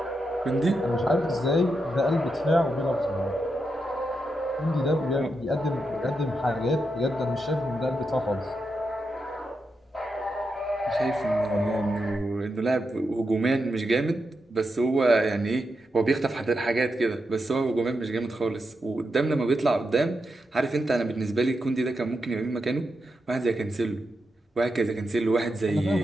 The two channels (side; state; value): both; normal; correlation 0.86